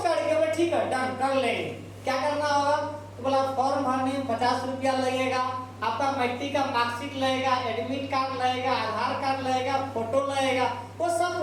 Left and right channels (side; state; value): both; identical; correlation 1.00